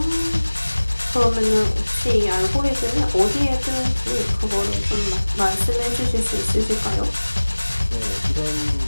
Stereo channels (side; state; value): both; inverted; correlation -1.00